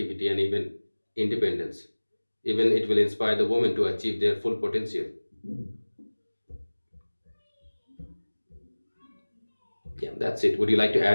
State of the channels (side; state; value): both; inverted; correlation -1.00